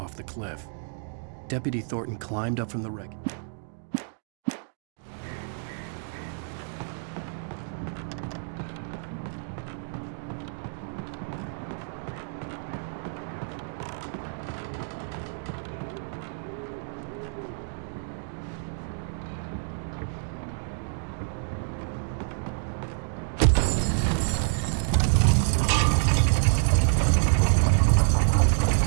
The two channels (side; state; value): left; silent; 59 dB below the other